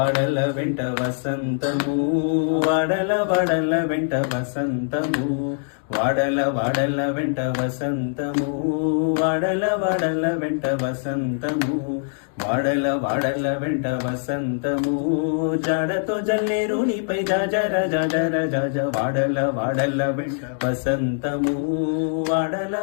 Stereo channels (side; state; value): right; silent; digital silence